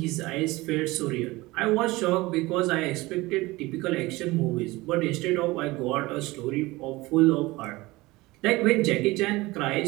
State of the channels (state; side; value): quieter; left; 20.8 dB